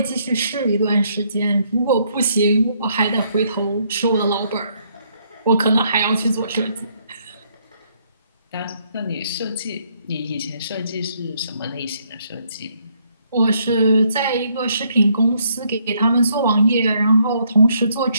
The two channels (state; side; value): inverted; both; correlation -0.71